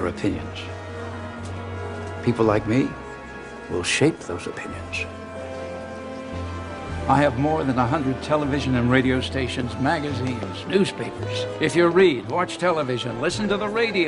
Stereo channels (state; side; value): identical; both; correlation 1.00